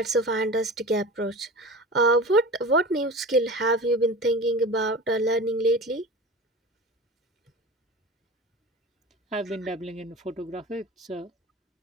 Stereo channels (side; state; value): both; normal; correlation 0.33